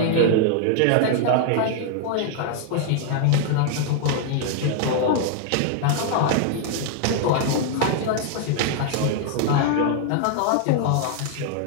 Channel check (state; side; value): different; both; correlation 0.00